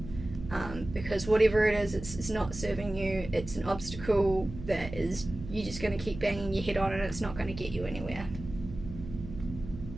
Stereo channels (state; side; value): noise; right; hum, 11 dB below the sound